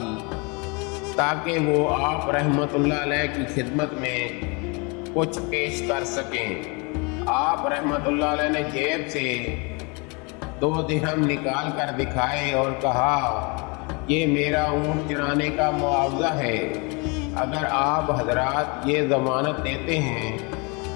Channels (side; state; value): right; quieter; 30.7 dB